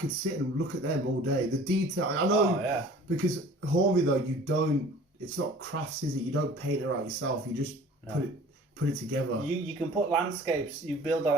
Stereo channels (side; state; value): both; normal; correlation 0.47